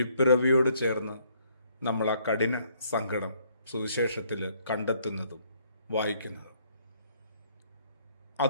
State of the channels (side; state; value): both; inverted; correlation -0.66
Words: ചേർന്ന് നമ്മൾ ആ കഠിന സങ്കടം സുവിശേഷത്തിൽ കണ്ടെത്തുന്നതും വായിക്കുന്നതും.